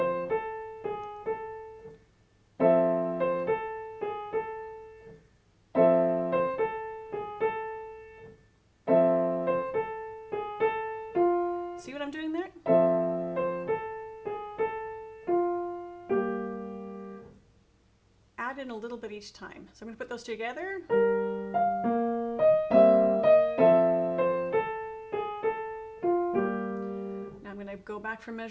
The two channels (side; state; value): both; identical; correlation 1.00